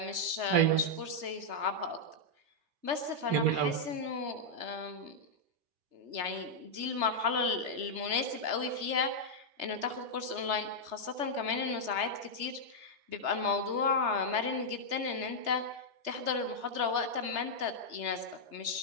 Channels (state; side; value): late; left; 3.3 ms